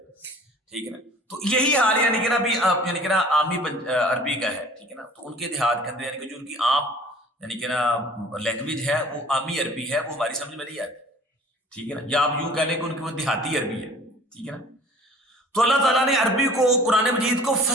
ٹھیک ہے نا۔ تو یہی حال یعنی کہ نا ابھی یعنی کہ نا عامی عربی کا ہے، ٹھیک ہے نا۔ تو ان کے دیہات کے اندر یعنی کہ جو ان کی عام یعنی کہ نا لینگویج ہے وہ عامی عربی ہے، وہ ہماری سمجھ میں نہیں آتی، ٹھیک ہے نا، یا آپ یوں کہہ لیں کہ ان کی وہ دیہاتی عربی ہے، ٹھیک ہے نا۔ تو اللہ تعالیٰ نے عربی کو قرآن مجید کو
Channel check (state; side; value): normal; both; correlation 0.48